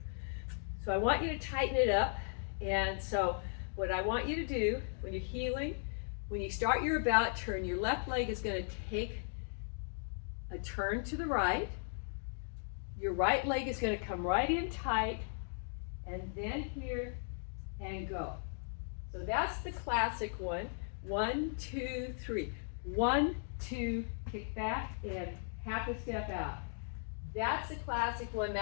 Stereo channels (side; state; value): right; silent; digital silence